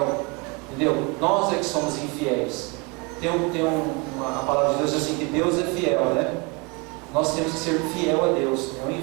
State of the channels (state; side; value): quieter; left; 29.4 dB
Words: entendeu? Nós é que somos infiéis. A palavra de Deus diz assim, que Deus é fiel, né? Nós temos que ser fiel a Deus, é o